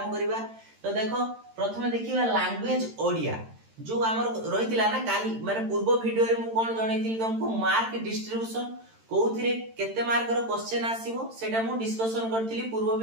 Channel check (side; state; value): left; late; 13 ms